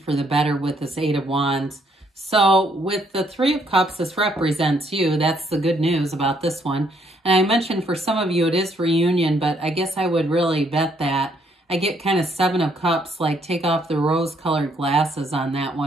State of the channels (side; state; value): both; normal; correlation 0.69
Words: the better with this 8 of Wands. So with the 3 of Cups, this represents you. That's the good news about this one. And I mentioned for some of you it is reunion, but I guess I would really bet that. I get kind of 7 of Cups, like take off the rose-colored glasses on that